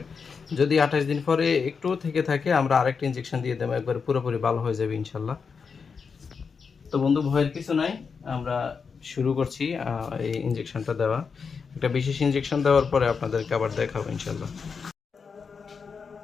যদি 28 দিন পরে একটু থেকে থাকে আমরা আরেকটা ইনজেকশন দিয়ে দেবো, একবার পুরোপুরি ভালো হয়ে যাবে ইনশাল্লাহ। তো বন্ধু, ভয়ের কিছু নাই, আমরা শুরু করছি এই ইনজেকশনটা দেওয়া। একটা বিশেষ ইনজেকশন দেওয়ার পরে আপনাদেরকে আবার দেখাবো ইনশাল্লাহ।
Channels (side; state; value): right; quieter; 5.6 dB